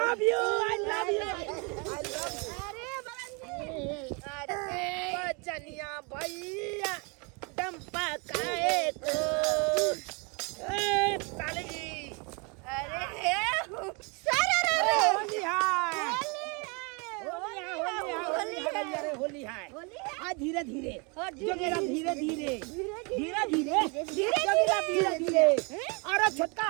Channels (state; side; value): quieter; left; 31.9 dB